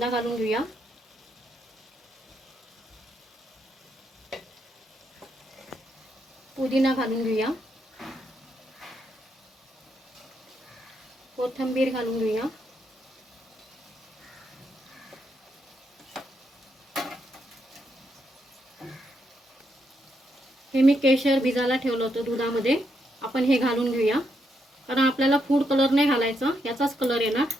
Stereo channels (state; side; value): normal; both; correlation 0.79